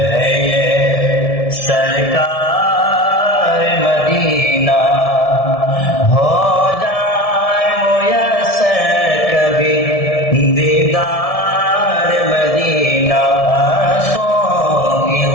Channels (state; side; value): late; right; 1.7 ms